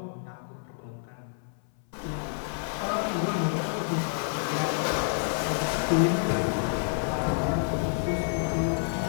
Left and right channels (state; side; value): silent; right; 58 dB below the other